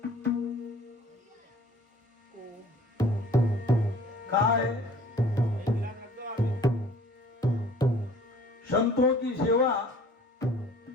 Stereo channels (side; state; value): both; normal; correlation 0.51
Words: काय संतों की सेवा,